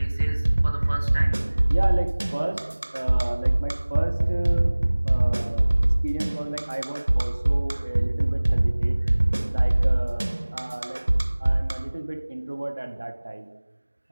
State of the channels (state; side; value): inverted; both; correlation -1.00